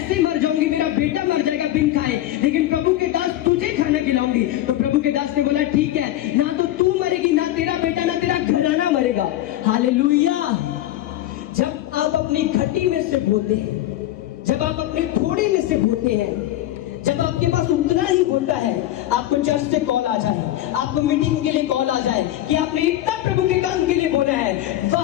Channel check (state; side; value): quieter; right; 14.0 dB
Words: मर जाऊंगी, मेरा बेटा मर जाएगा बिन खाए, लेकिन प्रभु के दास तुझे खाना खिलाऊंगी, तो प्रभु के दास ने बोला, ठीक है, ना तो तू मरेगी, ना तेरा बेटा, ना तेरा घराना मरेगा। हालेलुया। जब आप अपनी घटी में से बोलते हैं, जब आप अपने थोड़े में से बोलते हैं, जब आपके पास उतना ही होता है, आपको चर्च से कॉल आ जाए, आपको मीटिंग के लिए कॉल आ जाए कि आपने इतना प्रभु के काम के लिए बोला है,